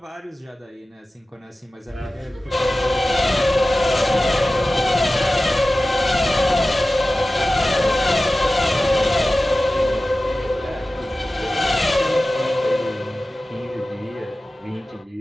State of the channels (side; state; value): both; normal; correlation 0.95